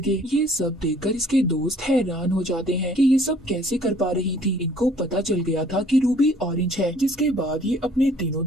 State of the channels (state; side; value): normal; both; correlation 0.57